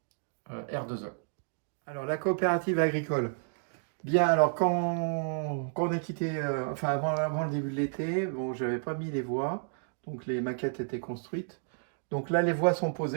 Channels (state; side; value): silent; left; digital silence